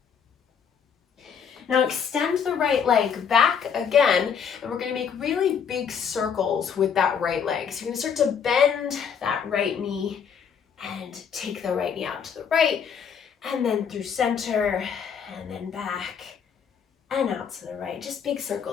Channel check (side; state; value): right; quieter; 7.1 dB